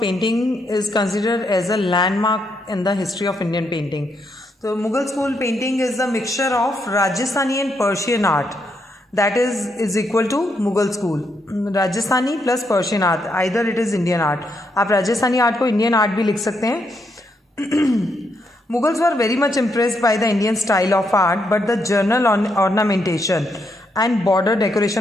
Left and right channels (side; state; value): both; normal; correlation 0.78